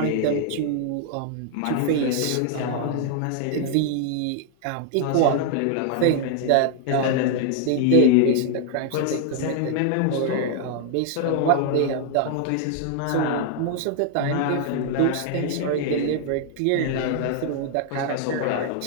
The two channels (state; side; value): different; both; correlation 0.00